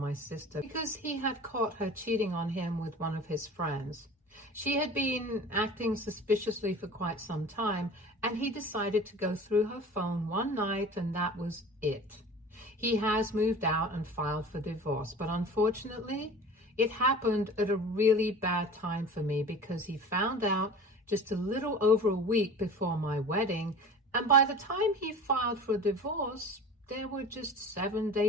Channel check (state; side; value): normal; both; correlation 0.39